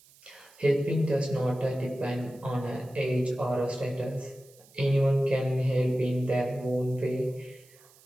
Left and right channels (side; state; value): right; noise; hiss, 27 dB below the sound